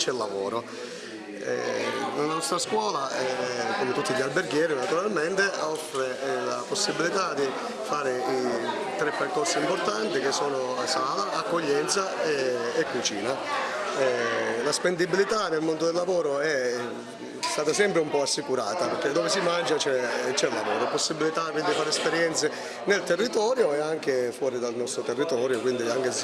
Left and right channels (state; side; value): identical; both; correlation 1.00